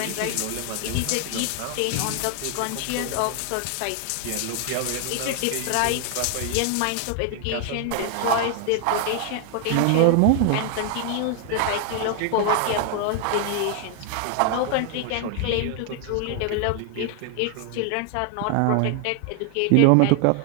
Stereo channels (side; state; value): both; different; correlation 0.00